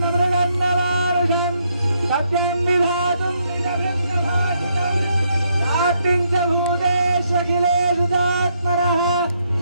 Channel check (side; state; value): both; inverted; correlation -0.75